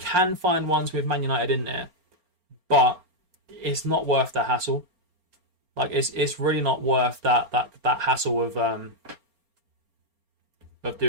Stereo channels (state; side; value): late; left; 4.4 ms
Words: find ones with Man United in there, but it's not worth the hassle. Like it's really not worth that hassle of